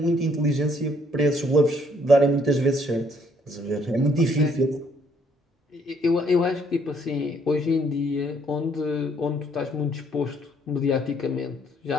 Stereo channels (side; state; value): both; normal; correlation 0.66